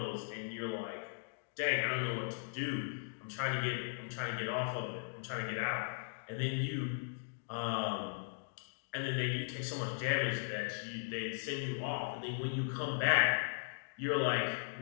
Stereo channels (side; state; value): right; silent; digital silence